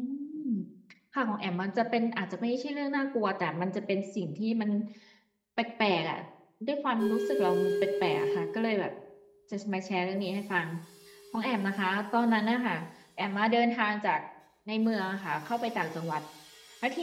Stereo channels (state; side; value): identical; both; correlation 1.00